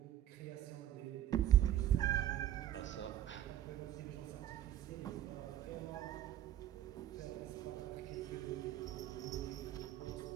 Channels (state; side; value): quieter; left; 11.7 dB